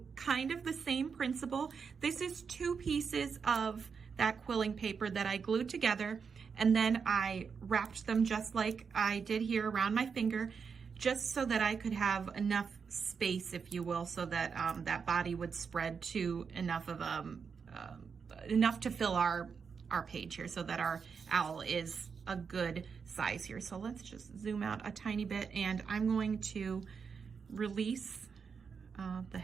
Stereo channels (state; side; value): quieter; left; 5.9 dB